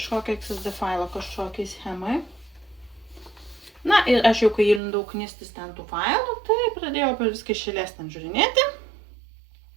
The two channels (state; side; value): drops out; left; at 4.8 s